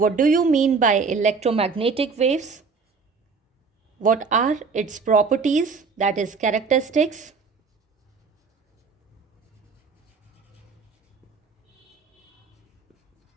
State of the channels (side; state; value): left; quieter; 4.9 dB